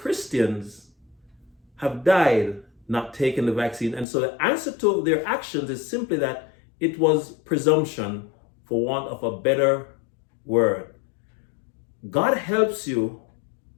have died not taking the vaccine. And so the answer to their actions is simply that it was presumption, for want of a better word. God helps you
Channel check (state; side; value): drops out; right; at 4.0 s